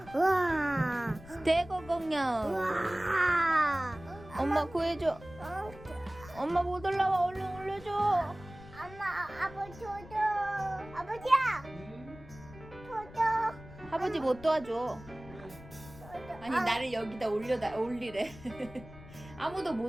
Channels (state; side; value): noise; left; rumble, 18 dB below the sound